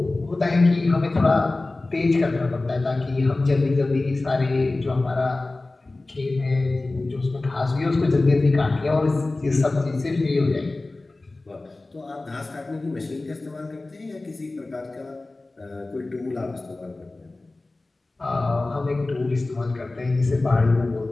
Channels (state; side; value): quieter; right; 3.1 dB